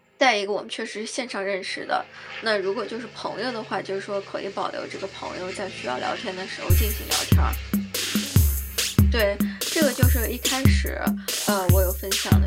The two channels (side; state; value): both; identical; correlation 1.00